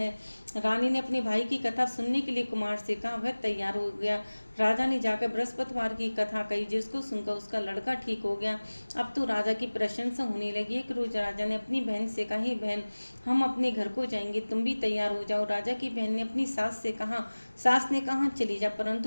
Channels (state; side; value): inverted; both; correlation -1.00